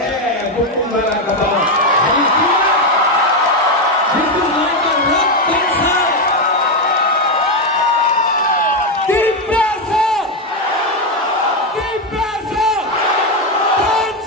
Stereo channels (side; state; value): both; normal; correlation 0.07